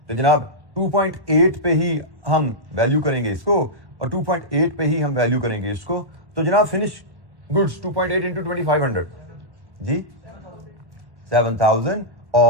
जनाब 2.8 पे ही हम वैल्यू करेंगे इसको और 2.8 पे ही हम वैल्यू करेंगे इसको। तो जनाब फिनिश गुड्स 2.8 इंटू 2500 जी 7,000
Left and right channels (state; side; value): late; left; 1.1 ms